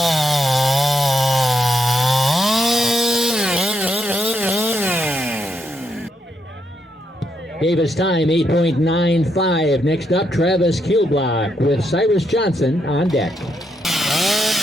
Davis time 8.95. Next up, Travis Kilblock with Cyrus Johnson on deck.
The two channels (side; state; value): both; normal; correlation 0.79